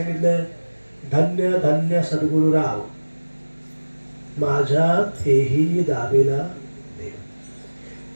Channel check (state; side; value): inverted; both; correlation -1.00